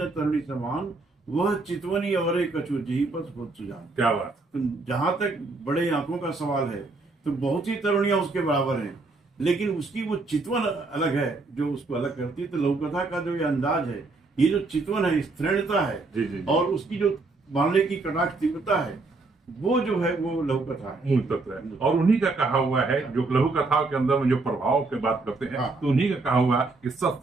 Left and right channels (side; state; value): left; quieter; 3.5 dB